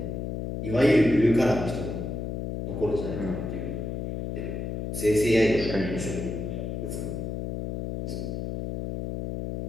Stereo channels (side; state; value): left; noise; hum, 4 dB below the sound